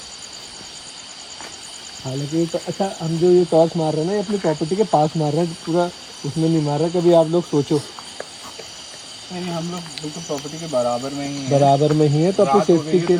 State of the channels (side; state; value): both; identical; correlation 1.00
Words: हालांकि तो अच्छा, हम जो ये टॉर्च मार रहे हैं ना ये अपनी प्रॉपर्टी के पास मार रहे हैं, पूरा उसमें नहीं मार रहे। कभी आप लोग सोचो, नहीं हम लोग बिल्कुल प्रॉपर्टी के बराबर में ही हैं। बराबर में ही है तो अपनी रात हो गई सेफ्टी है, के